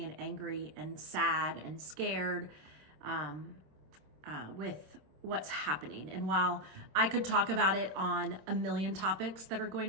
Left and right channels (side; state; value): left; late; 26 ms